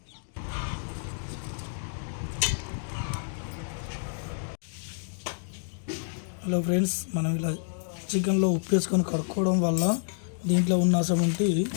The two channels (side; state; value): right; silent; digital silence